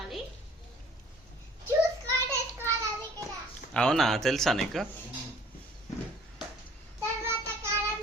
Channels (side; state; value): both; normal; correlation 0.53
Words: అవునా, తెలుసా నీకు?